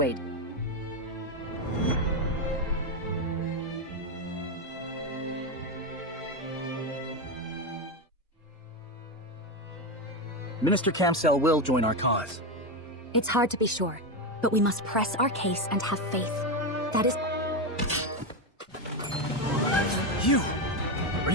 Minister Camsell will join our cause. It's hard to be sure, but we must press our case and have faith. That is... You! Are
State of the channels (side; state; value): both; normal; correlation 0.12